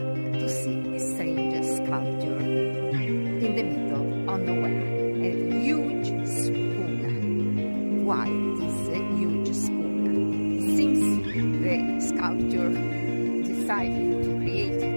to see a strange sculpture in the middle of nowhere, a huge spoon. Why this huge spoon? It seems the sculptor decided to create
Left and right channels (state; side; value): inverted; both; correlation -1.00